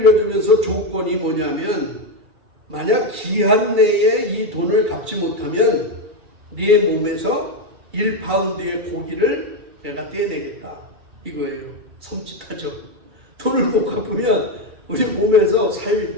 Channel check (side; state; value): left; late; 2.3 ms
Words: 조건이 뭐냐면, 만약 기한 내에 이 돈을 갚지 못하면 네 몸에서 1파운드의 고기를 내가 떼내겠다, 이거예요. 섬찟하죠. 돈을 못 갚으면 우리 몸에서